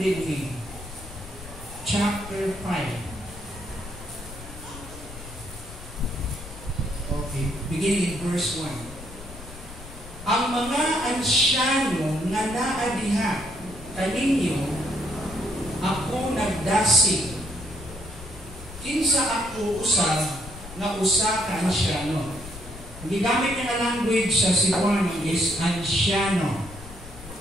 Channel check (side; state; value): left; noise; rumble, 15 dB below the sound